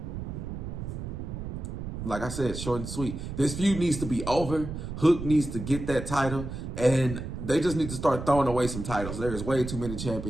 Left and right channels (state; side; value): noise; right; rumble, 7 dB below the sound